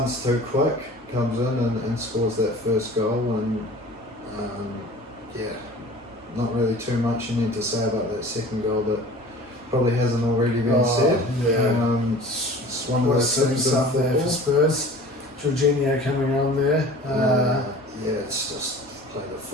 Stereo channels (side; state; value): both; normal; correlation 0.43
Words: too quick, comes in and scores that first goal, and not really too much you need to say about that second goal that probably hasn't already been said. Yeah. It's one of those things up there for Spurs. Jorginho coming on there. It's just play the